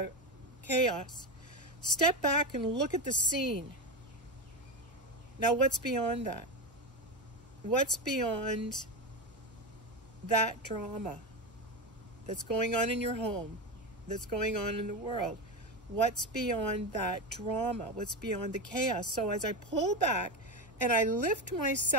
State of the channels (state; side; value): normal; both; correlation 0.16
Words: chaos, step back and look at the scene. Now, what's beyond that? What's beyond that drama that's going on in your home, that's going on in the world? What's beyond that drama? What's beyond the chaos? So as I pull back and I lift